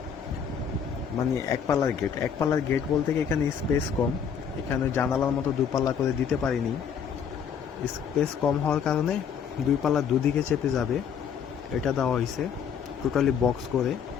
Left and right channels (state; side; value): quieter; right; 7.4 dB